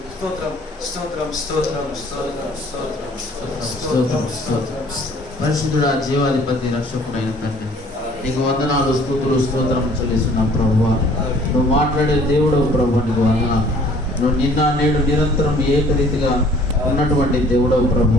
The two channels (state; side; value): normal; both; correlation 0.55